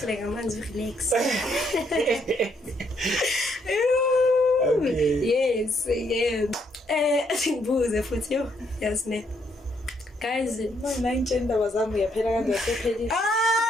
ngamanzi relax. Okay. Yes, yeah. Ngibuze futhi yo yazi ne guys Manje indaba zami yaphela kanjani sephelile.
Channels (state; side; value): normal; both; correlation 0.72